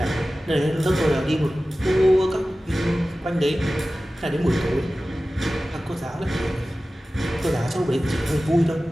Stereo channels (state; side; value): normal; both; correlation 0.96